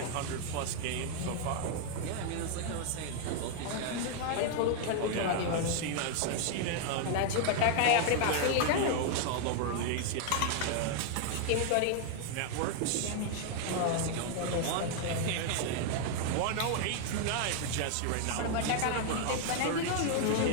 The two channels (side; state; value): both; different; correlation 0.00